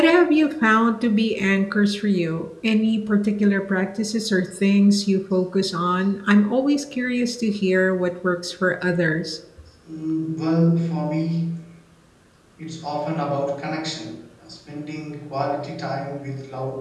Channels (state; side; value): identical; both; correlation 1.00